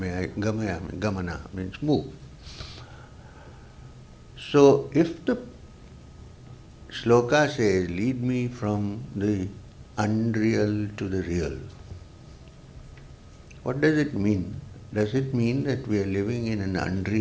I, gamana means move. So if the shloka says, lead me from the unreal to the real, what does it mean? Does it mean that we are living in an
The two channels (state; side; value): identical; both; correlation 1.00